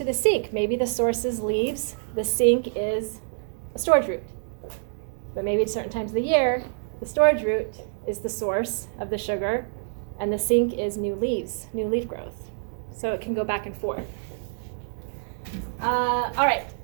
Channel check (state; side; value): silent; left; digital silence